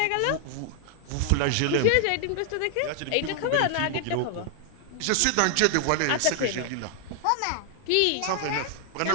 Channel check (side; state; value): both; different; correlation 0.00